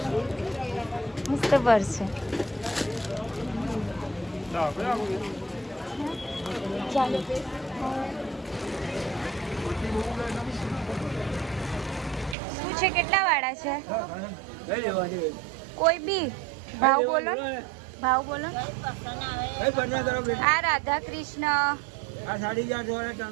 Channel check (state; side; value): drops out; left; at 12.4 s